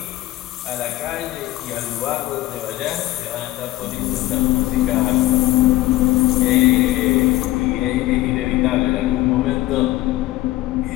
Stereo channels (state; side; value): quieter; right; 16.8 dB